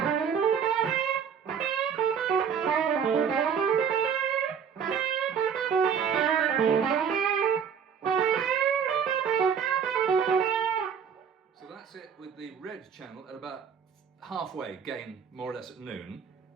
So that's it with the red channel at about halfway gain, more or less at noon.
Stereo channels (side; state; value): left; quieter; 7.3 dB